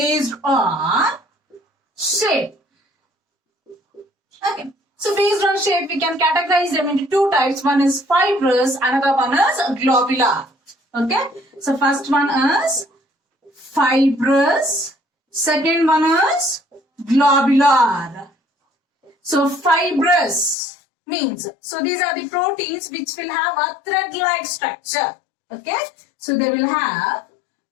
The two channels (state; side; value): drops out; right; at 20.6 s